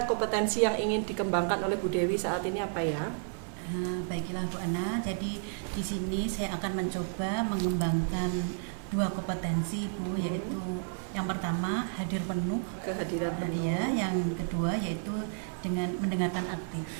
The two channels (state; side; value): silent; left; digital silence